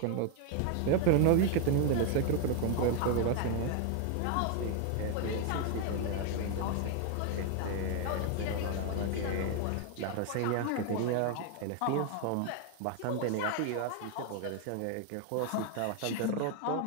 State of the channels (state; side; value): different; both; correlation 0.01